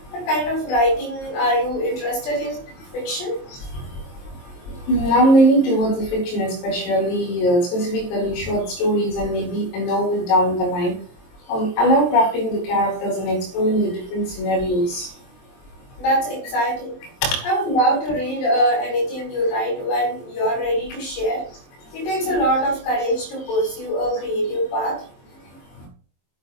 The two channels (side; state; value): right; late; 22 ms